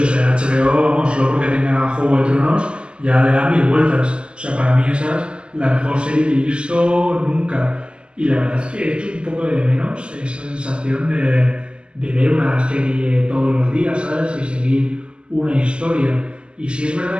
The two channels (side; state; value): left; late; 0.051 ms